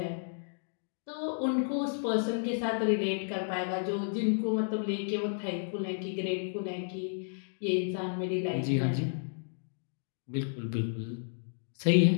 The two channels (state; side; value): silent; right; digital silence